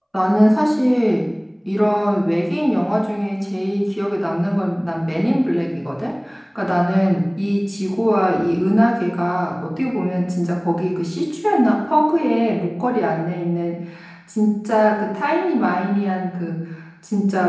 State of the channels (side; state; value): both; identical; correlation 1.00